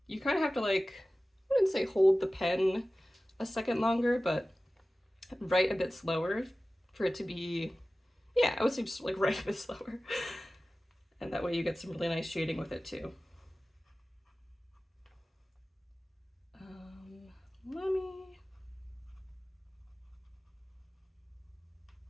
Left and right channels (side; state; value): both; normal; correlation 0.96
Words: you kind of have to like, I wouldn't say hold the pen a second longer, but write a bit slower for it to be, yeah, I would say just like write a bit slower. And that way you get some really nice shading with it too. Let me,